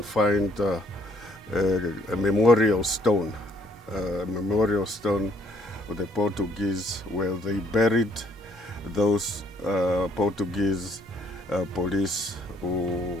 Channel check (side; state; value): both; normal; correlation 0.67